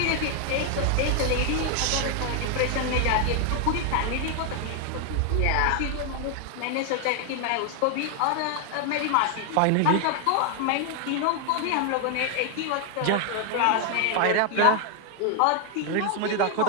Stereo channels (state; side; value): different; both; correlation 0.00